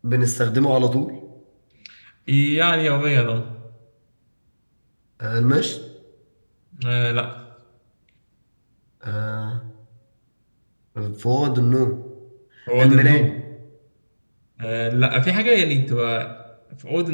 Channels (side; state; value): both; inverted; correlation -1.00